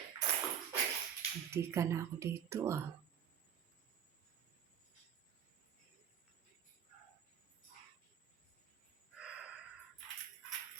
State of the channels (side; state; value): left; quieter; 8.5 dB